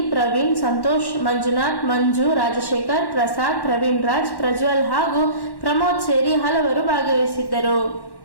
ಪ್ರವೀಣ್, ಸಂತೋಷ್, ಮಂಜುನಾಥ್, ಮಂಜು, ರಾಜಶೇಖರ್, ಪ್ರಸಾದ್, ಪ್ರವೀಣ್ ರಾಜ್, ಪ್ರಜ್ವಲ್ ಹಾಗೂ ಪ್ರಮೋದ್ ಸೇರಿ ಹಲವರು ಭಾಗವಹಿಸಿದ್ದರು.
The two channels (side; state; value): right; late; 1.1 ms